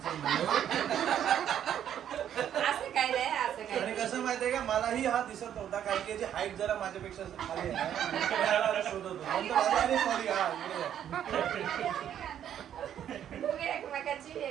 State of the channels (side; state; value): left; quieter; 10.0 dB